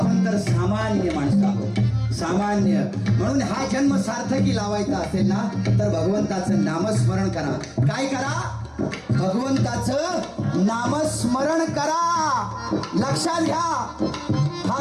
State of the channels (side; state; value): both; identical; correlation 1.00